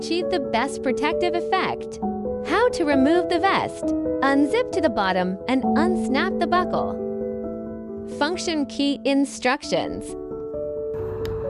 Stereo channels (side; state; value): both; identical; correlation 1.00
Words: the best protective effect. How to remove the vest. Unzip to the bottom and unsnap the buckle. Function key instructions.